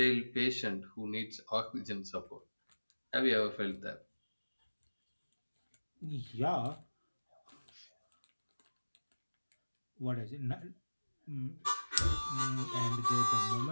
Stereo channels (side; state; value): both; inverted; correlation -1.00